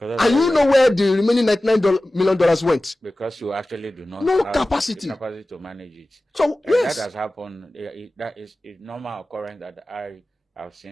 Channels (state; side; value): normal; both; correlation 0.96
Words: And you know where the remaining $99 million went. Because you actually do not have capacity to manage it. So yes, that has happened. That is a normal occurrence that I have